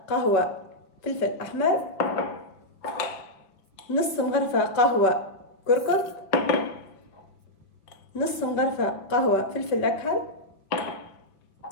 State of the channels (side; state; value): right; late; 5.3 ms